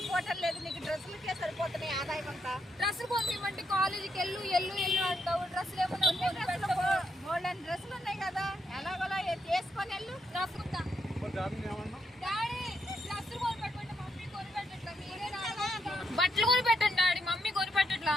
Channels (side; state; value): both; normal; correlation 0.80